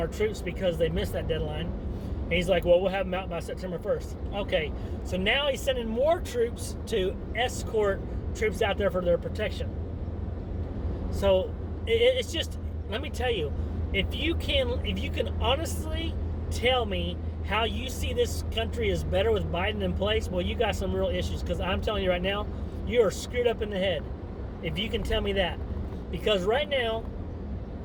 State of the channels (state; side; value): identical; both; correlation 1.00